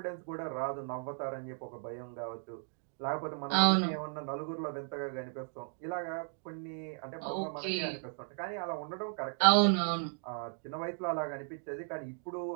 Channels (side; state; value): left; silent; 54 dB below the other